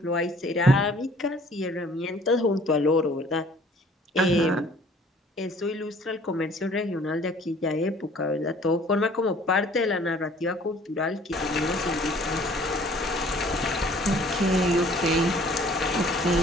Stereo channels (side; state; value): both; normal; correlation 0.54